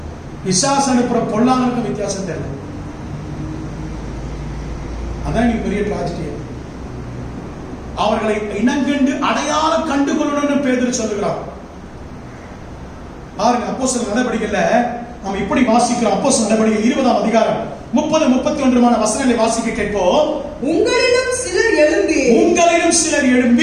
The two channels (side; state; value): both; identical; correlation 1.00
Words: பிசாசு அனுப்புற பொல்லாங்கனுக்கும் வித்தியாசம் தெரியல. அதான் நீ பெரிய டிராஜடி. அவர்களை இனங்கண்டு அடையாளம் கண்டுகொள்ளணும்னு பேதுரு சொல்லுகிறான். பாருங்க, அப்போஸ்தலர் நடவடிக்கையில நாம் இப்படி வாசிக்கிறோம். அப்போஸ்தலர் நடவடிக்கை 20ஆம் அதிகாரம் 30-31 வசனங்களை வாசிக்க கேட்போம். உங்களிலும் சிலர்